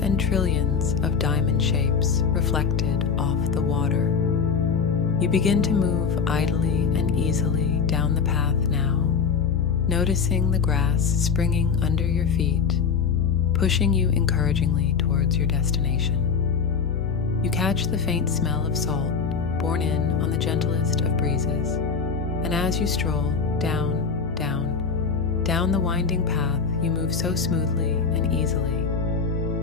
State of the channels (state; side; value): quieter; right; 5.8 dB